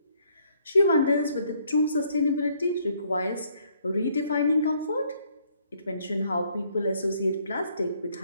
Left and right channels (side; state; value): both; inverted; correlation -0.67